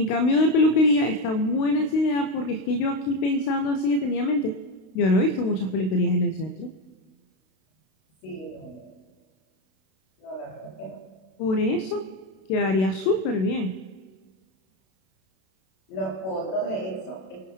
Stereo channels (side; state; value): right; late; 32 ms